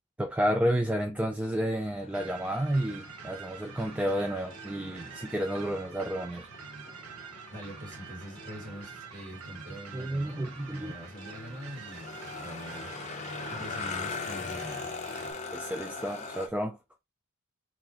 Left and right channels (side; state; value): both; normal; correlation 0.76